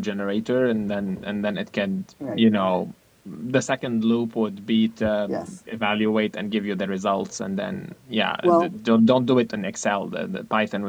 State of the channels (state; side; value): identical; both; correlation 1.00